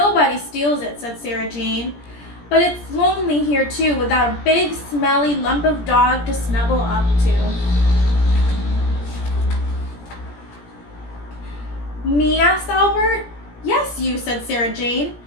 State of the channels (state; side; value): late; right; 17 ms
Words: steals it, said Sarah Jane. But it's lonely here, too, without a big, smelly lump of dog to snuggle up to. Me, asked Albert. Yes, you, said Sarah Jane.